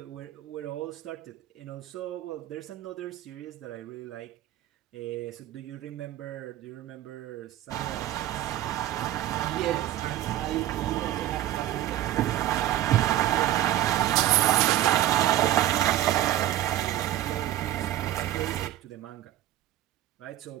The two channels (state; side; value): quieter; left; 13.7 dB